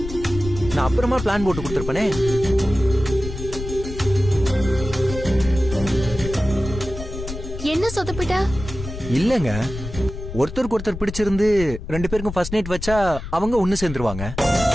நான் அப்புறமா பிளான் போட்டு கொடுத்திருப்பேனே. என்ன சொதப்பிட்ட? இல்லங்க, ஒருத்தருக்கு ஒருத்தர் பிடிச்சிருந்து 2 பேருக்கும் ஃபர்ஸ்ட் நைட் வச்சா அவங்க ஒண்ணு சேர்ந்துருவாங்க.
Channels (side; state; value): left; noise; rumble, 9 dB below the sound